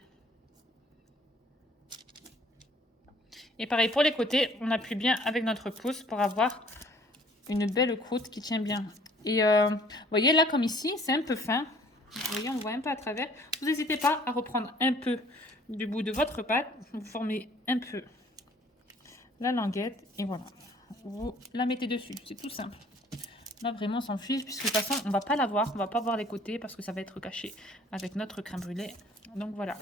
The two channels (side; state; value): both; normal; correlation 0.55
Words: Et pareil pour les côtés, on appuie bien avec notre pouce pour avoir une belle croûte qui tient bien. Et vous voyez là, comme ici, c'est un peu fin. Vous voyez, on voit un peu à travers. Vous n'hésitez pas à reprendre un peu du bout de votre pâte. Vous formez un peu la languette et voilà. Vous la mettez dessus. C'est tout simple. Là, vraiment, on s'en fiche puisque de toute façon, on va pas la voir. On va pas voir les côtés parce que ça va être caché avec notre crème brûlée. Donc voilà.